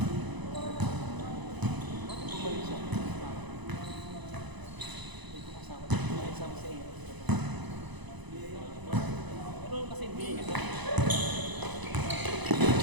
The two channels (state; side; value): late; left; 1.0 ms